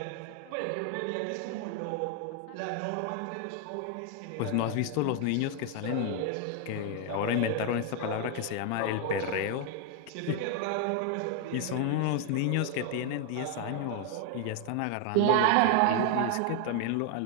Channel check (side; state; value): both; different; correlation 0.00